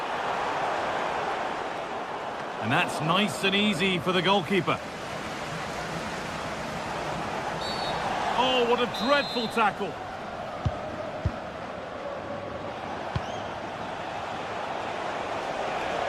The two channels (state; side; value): identical; both; correlation 1.00